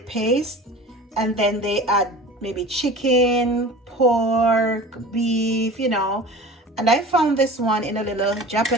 paste, and then they add maybe chicken, pork, beef, And I found this one in a little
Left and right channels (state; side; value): normal; both; correlation 0.39